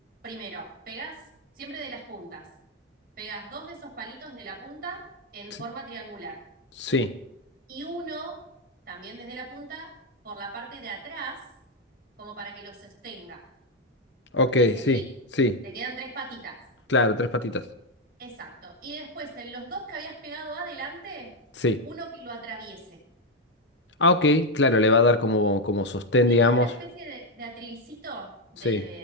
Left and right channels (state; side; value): normal; both; correlation 0.05